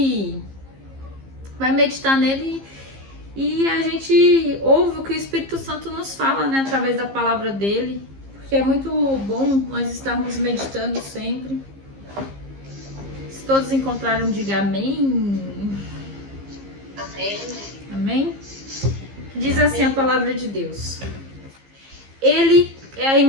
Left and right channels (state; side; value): late; left; 15 ms